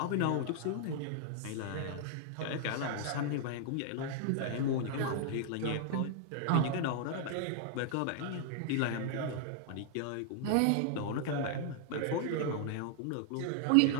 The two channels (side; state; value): both; different; correlation 0.00